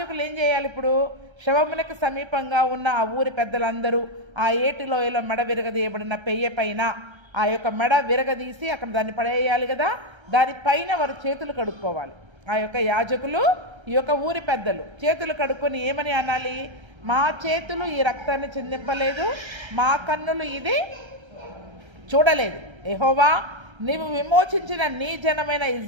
ఏం చేయాలి? ఇప్పుడు శవమునకు సమీపంగా ఉన్న ఆ ఊరి పెద్దలందరూ ఆ ఏటి లోయలో మెడ విరగదీయబడిన పెయ్య పైన ఆ యొక్క మెడ విరగదీసి అక్కడ దాన్ని పడేయాలి కదా. దానిపైన వారు చేతులు కడుక్కోవాలి. ఆ యొక్క యాజకులు, ఈ యొక్క ఊరి పెద్దలు చేతులు కడుక్కొని ఏమని అనాలి? మా చేతులు ఈ రక్తాన్ని చిందింపలేదు, మా కన్నులు ఇది చూడలేదు. యెహోవా, నీవు విమోచించిన నీ జనమైన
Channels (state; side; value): late; left; 1.3 ms